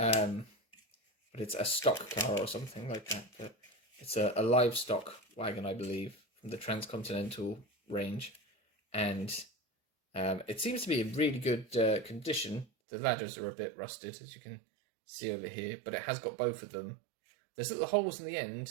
it's a stock car or something like that. But it's a livestock wagon, I believe, from the Transcontinental range, and it seems to be in really good condition. The ladders are a bit rusted, as you can see over here, but it has got both of them. There's little holes in the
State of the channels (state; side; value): drops out; left; at 12.7 s